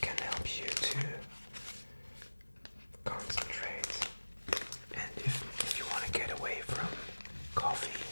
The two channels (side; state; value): both; inverted; correlation -1.00